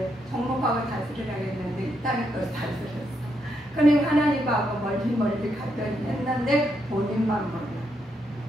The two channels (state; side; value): normal; both; correlation 0.79